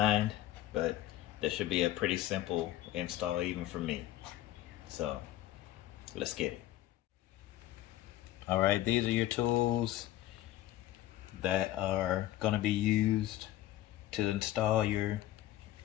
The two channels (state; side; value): quieter; right; 14.3 dB